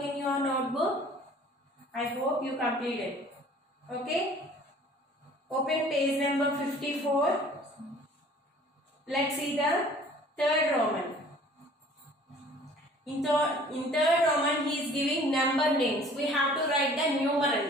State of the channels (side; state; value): both; normal; correlation 0.51